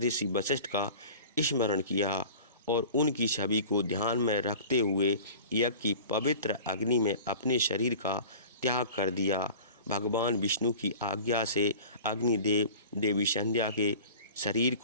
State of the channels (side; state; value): both; inverted; correlation -0.40